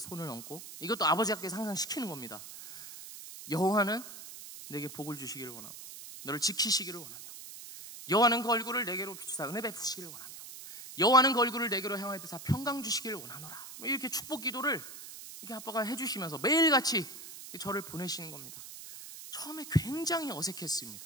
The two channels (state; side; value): noise; right; hiss, 13 dB below the sound